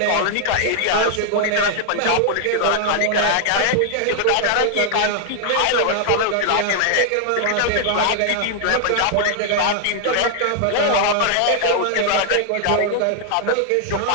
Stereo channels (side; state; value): both; different; correlation 0.00